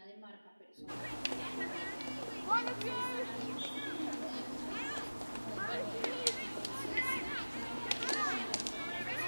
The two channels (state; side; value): inverted; both; correlation -1.00